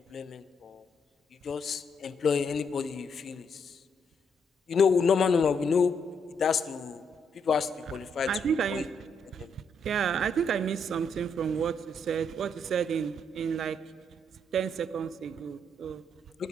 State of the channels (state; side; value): normal; both; correlation 0.75